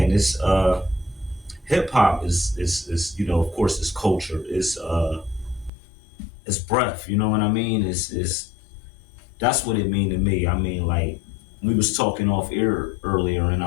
it's hip hop is of course it's culture. It's breath, you know what I mean? It's that's what it mean to me. I mean, like we was talking off air earlier and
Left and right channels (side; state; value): right; drops out; at 5.7 s